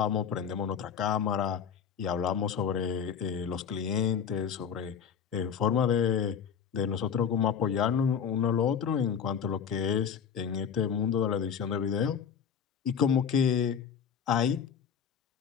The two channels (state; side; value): quieter; right; 7.3 dB